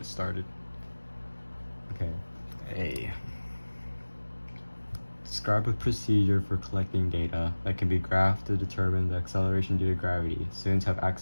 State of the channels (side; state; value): both; inverted; correlation -1.00